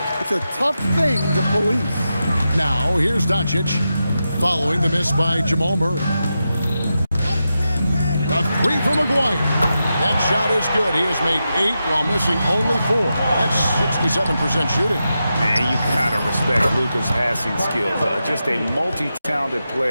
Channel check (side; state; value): both; inverted; correlation -0.89